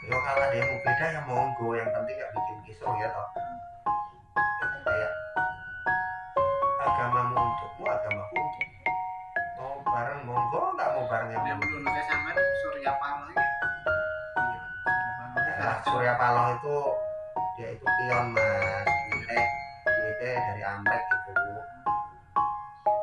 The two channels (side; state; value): both; identical; correlation 1.00